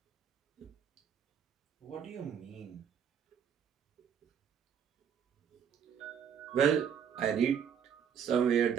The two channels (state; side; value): quieter; left; 7.9 dB